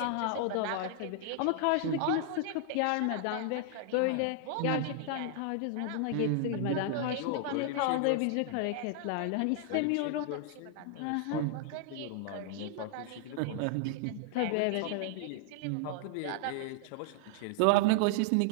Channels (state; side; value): different; both; correlation 0.00